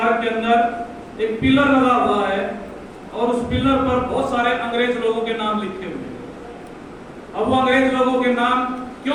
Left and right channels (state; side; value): identical; both; correlation 1.00